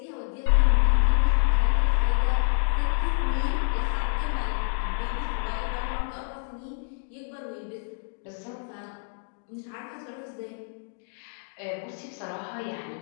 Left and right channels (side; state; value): right; silent; 60 dB below the other